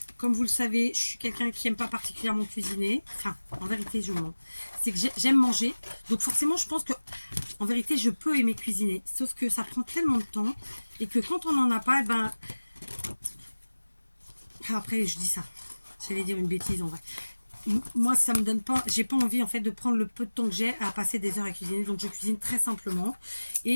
Comme vous le savez, je suis quelqu'un qui n'aime pas particulièrement cuisiner. Enfin, en vérité, je mens. C'est que j'aime manger. Donc forcément, je pense que, en vérité, je peux aimer cuisiner. Sauf que ça prend tellement de temps. Et que quand on n'en a pas, eh ben... Après, je dis ça. J'allais dire une bêtise en vrai. Moi, ça me donne pas... J'ai pas envie, en fait, de prendre le peu de temps que j'ai à passer des heures à cuisiner. Donc, je cuisine très simplement.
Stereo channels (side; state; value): both; inverted; correlation -1.00